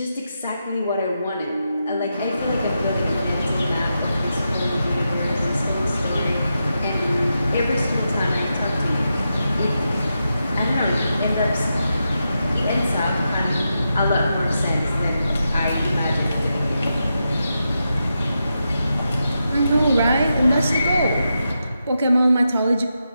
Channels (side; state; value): both; inverted; correlation -0.87